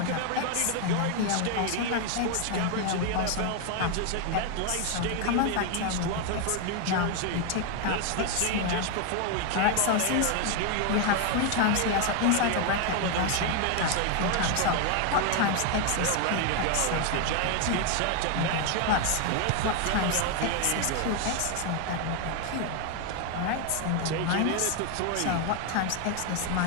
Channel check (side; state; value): both; different; correlation 0.01